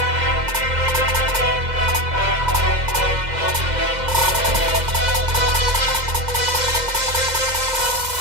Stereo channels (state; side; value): late; left; 2.0 ms